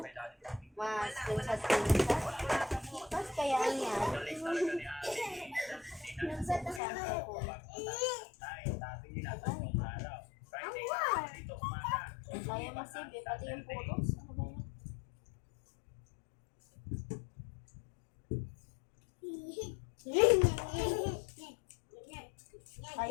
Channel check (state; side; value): drops out; right; at 6.8 s